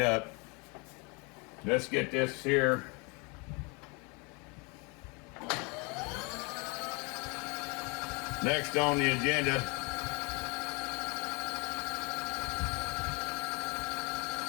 up. Let's get this here. Next on the agenda.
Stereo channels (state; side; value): quieter; right; 30.6 dB